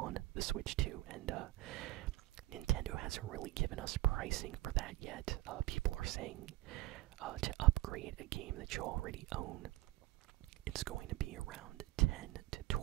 the Switch 2, and Nintendo hasn't really given us pricing for that yet. People are saying to upgrade a game that you already own, it's going to be around $10 to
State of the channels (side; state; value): left; quieter; 17.5 dB